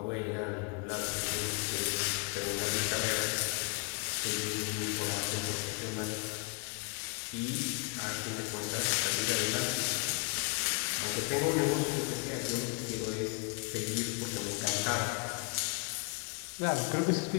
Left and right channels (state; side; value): quieter; right; 31.1 dB